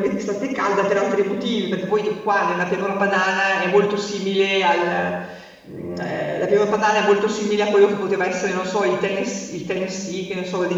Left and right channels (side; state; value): both; identical; correlation 1.00